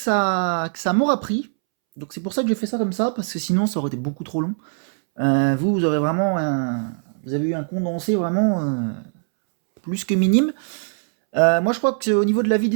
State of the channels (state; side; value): silent; left; 65 dB below the other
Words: m'aura pris. Donc c'est pour ça que j'ai fait ça comme ça, parce que sinon ça aurait été beaucoup trop long. Vous aurez vraiment vous avez eu un condensé vraiment plus que minime. Moi je crois qu'au niveau de la